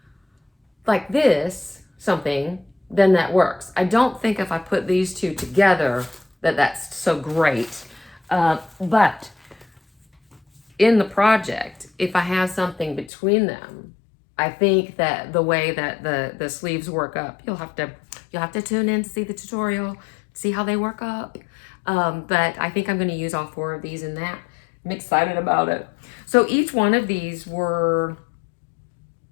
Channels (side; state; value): right; drops out; at 13.1 s